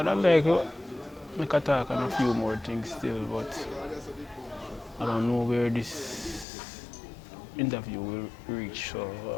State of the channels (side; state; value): right; drops out; at 6.5 s